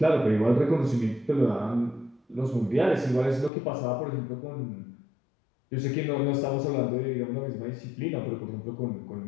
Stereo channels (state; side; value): drops out; right; at 3.5 s